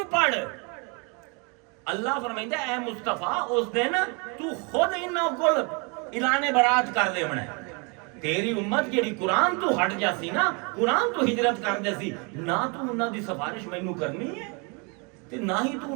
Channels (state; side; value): quieter; left; 32.7 dB